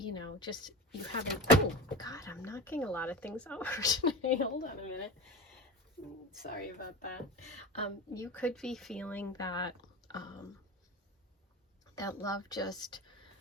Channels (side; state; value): both; normal; correlation 0.29